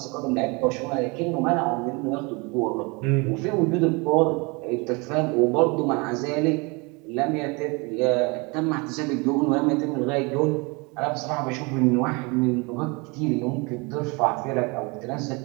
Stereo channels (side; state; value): left; quieter; 28.5 dB